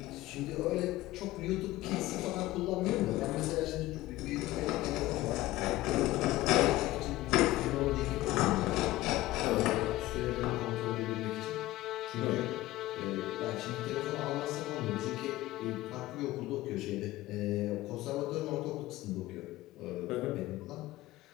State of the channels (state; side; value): quieter; right; 17.2 dB